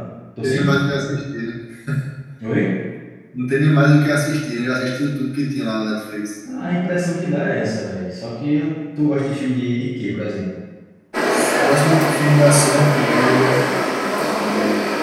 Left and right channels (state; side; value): identical; both; correlation 1.00